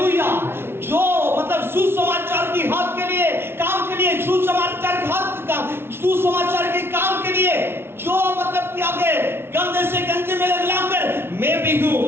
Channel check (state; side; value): late; left; 0.12 ms